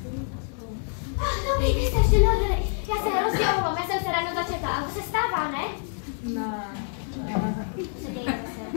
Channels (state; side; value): silent; right; 59 dB below the other